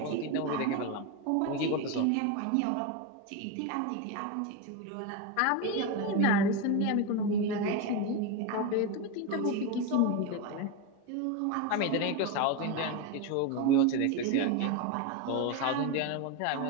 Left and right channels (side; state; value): both; different; correlation 0.04